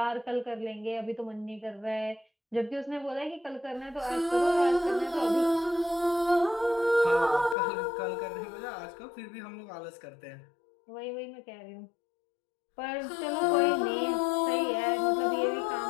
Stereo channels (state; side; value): drops out; right; at 7.6 s